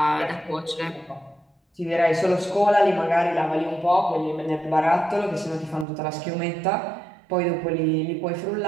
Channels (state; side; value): drops out; left; at 5.9 s